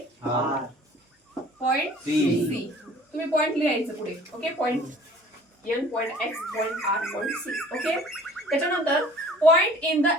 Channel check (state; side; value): normal; both; correlation 0.50